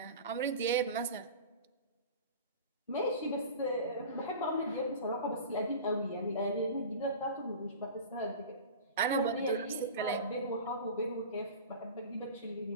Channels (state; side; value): inverted; both; correlation -0.35